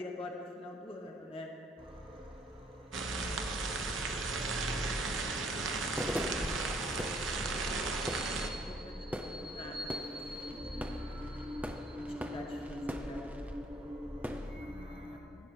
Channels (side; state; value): both; normal; correlation 0.63